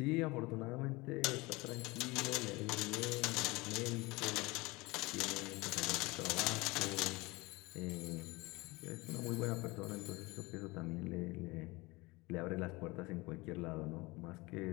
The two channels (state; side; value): quieter; right; 23.3 dB